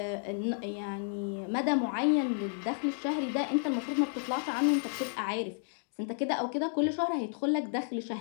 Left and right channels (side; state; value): right; silent; digital silence